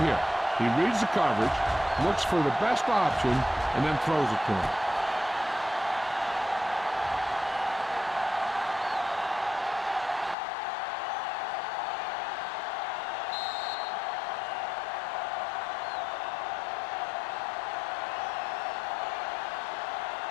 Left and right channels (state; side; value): drops out; right; at 10.4 s